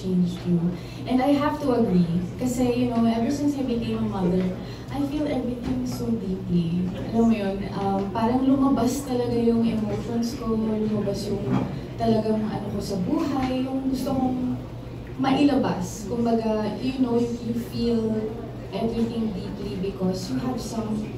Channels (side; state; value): both; identical; correlation 1.00